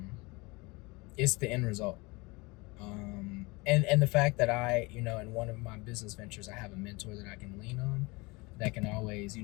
it's the end result. And the fact that I, in one of my business ventures, I have a mentor that I can lean on, that can always,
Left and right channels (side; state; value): right; quieter; 25.2 dB